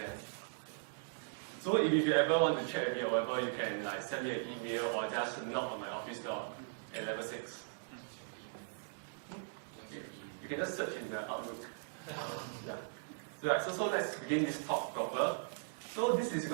So if you ever want to chat with me or whatever, you can send me an email or just knock on my office door at level 6. You can just search in the Outlook. Yeah. So let's begin this talk proper. So this is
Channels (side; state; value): left; silent; digital silence